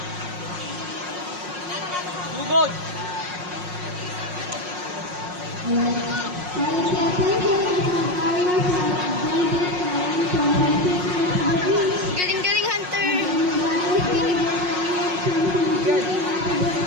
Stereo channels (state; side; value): late; left; 5.5 ms